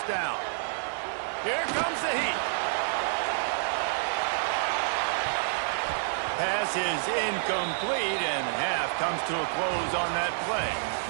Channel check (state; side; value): silent; left; 59 dB below the other